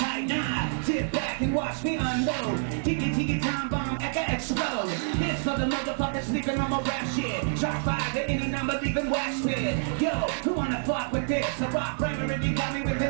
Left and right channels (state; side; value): silent; left; 60 dB below the other